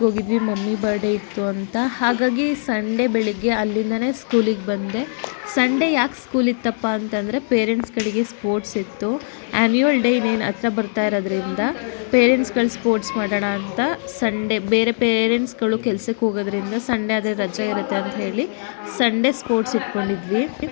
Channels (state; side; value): silent; right; digital silence